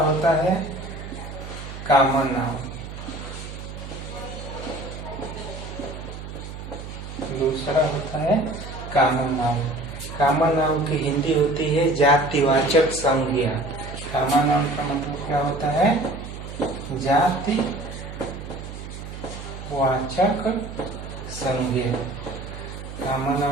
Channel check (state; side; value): noise; right; hum, 10 dB below the sound